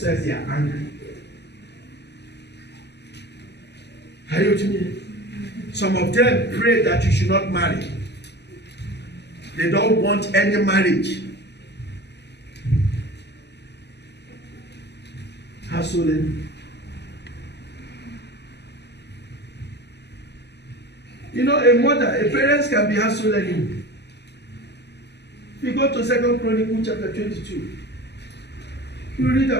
they are angry. Are you with me? Some of them pray that you should not marry. They don't want any marriage. Household enemy. You know, a parent can be household enemy. If you go to 2 Chronicles chapter 22, you read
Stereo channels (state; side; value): late; right; 0.49 ms